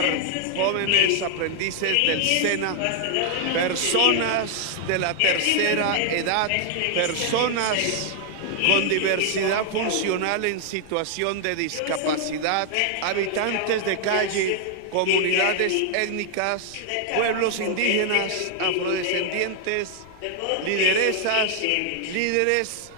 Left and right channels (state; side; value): different; both; correlation 0.00